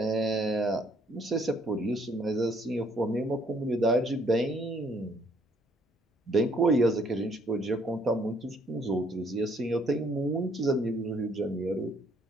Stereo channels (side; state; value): both; normal; correlation 0.65